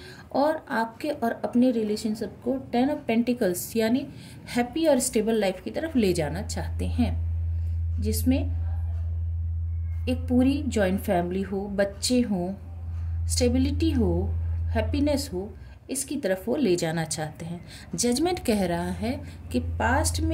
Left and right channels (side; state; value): both; identical; correlation 1.00